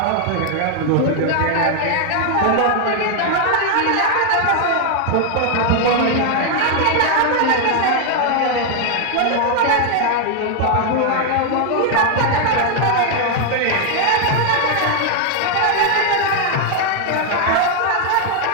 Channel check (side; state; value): both; different; correlation 0.00